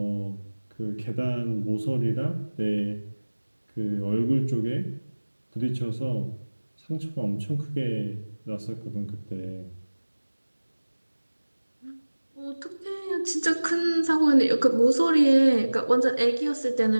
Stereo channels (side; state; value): both; inverted; correlation -1.00